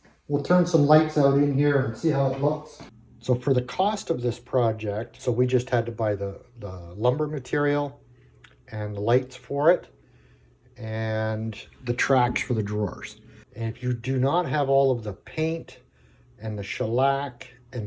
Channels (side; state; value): both; identical; correlation 1.00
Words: We'll turn some lights out in here and see how it looks. So for the cost of this project, so we just had to buy the lumber material and the lights for it and the tracks for the drawers. And if you do not have all of the paint and the shellac